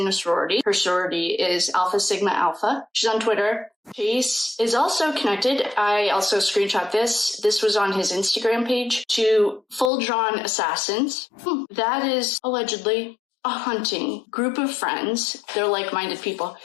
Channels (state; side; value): drops out; right; at 9.9 s